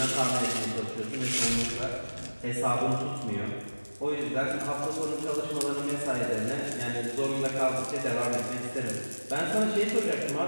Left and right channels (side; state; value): both; inverted; correlation -1.00